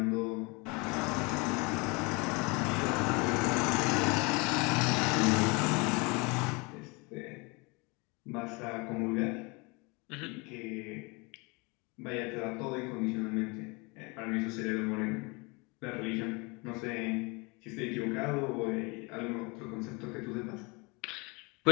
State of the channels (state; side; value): quieter; right; 28.1 dB